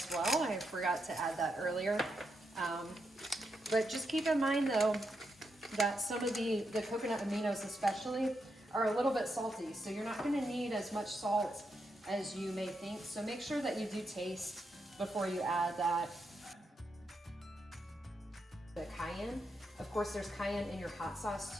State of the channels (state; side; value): normal; both; correlation 0.83